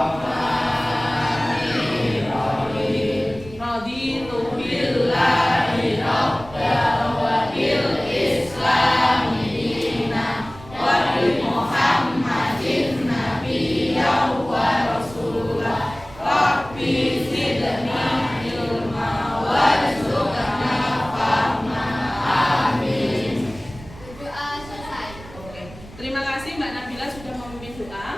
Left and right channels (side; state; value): right; noise; rumble, 18 dB below the sound